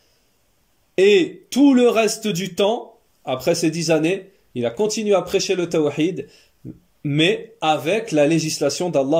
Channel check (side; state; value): both; identical; correlation 1.00